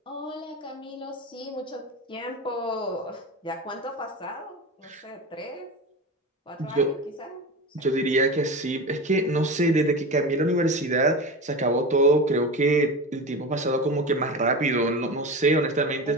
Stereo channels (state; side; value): normal; both; correlation 0.26